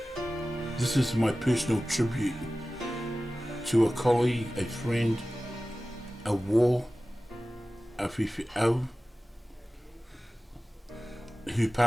This is my personal tribute to a colleague, a friend, a war, a Fi'au, who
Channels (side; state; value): both; normal; correlation 0.96